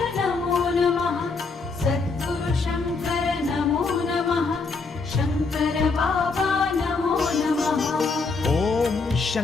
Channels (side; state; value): right; quieter; 4.3 dB